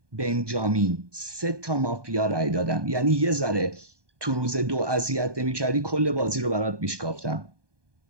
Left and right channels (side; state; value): left; late; 1.2 ms